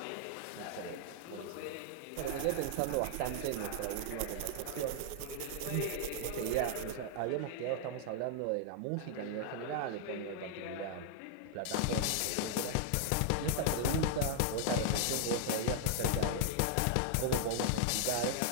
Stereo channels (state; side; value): different; both; correlation -0.01